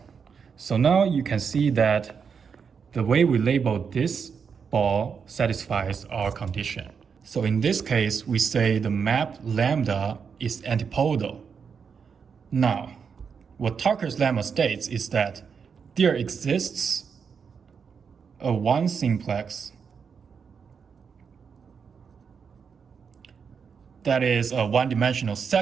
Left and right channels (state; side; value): quieter; left; 6.3 dB